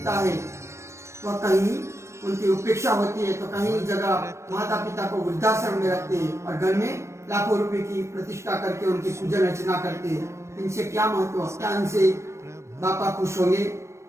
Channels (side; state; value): left; late; 0.13 ms